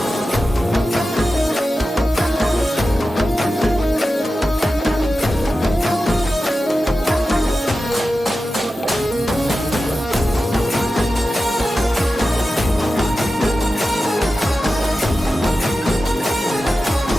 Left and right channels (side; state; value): both; normal; correlation 0.93